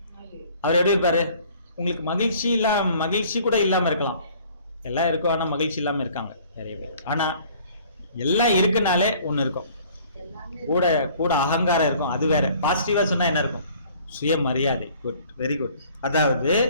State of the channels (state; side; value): inverted; both; correlation -0.54